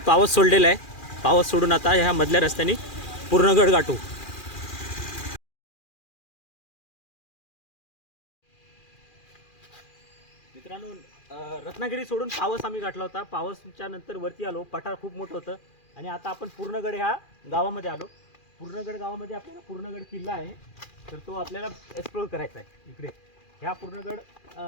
पावस सोडलेला आहे. पावस सोडून आता ह्या मधल्या रस्त्याने पूर्णगड गाठू. मित्रांनो, रत्नागिरी सोडून पावस आम्ही गाठला होता. पावसच्या नंतर वरती आलो. पठार खूप मोठं होतं आणि आता आपण पूर्णगड ह्या गावामध्ये आलो. पूर्णगड गावामध्ये आपल्याला पूर्णगड किल्ला आहे, तर तो आपल्याला एक्सप्लोर करायचा आहे. इकडे ह्या पूर्णगड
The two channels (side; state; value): right; late; 2.4 ms